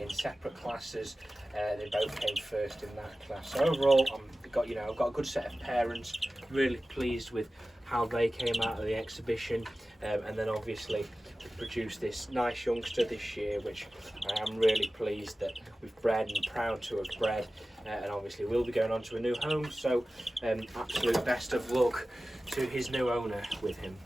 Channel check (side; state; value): both; normal; correlation 0.96